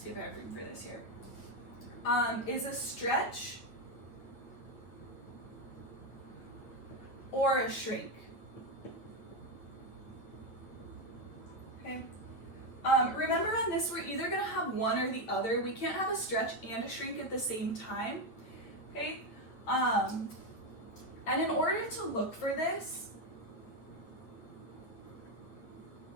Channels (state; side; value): late; right; 8.8 ms